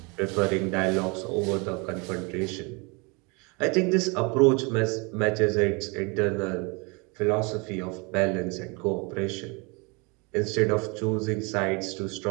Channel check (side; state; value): left; quieter; 29.6 dB